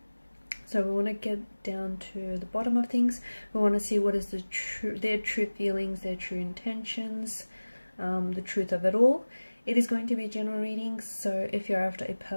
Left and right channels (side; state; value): both; inverted; correlation -1.00